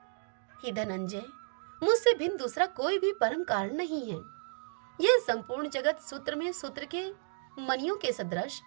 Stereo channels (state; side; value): silent; left; digital silence